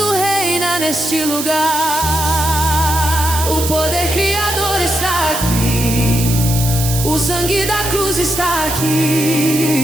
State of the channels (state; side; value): noise; right; hiss, 5 dB below the sound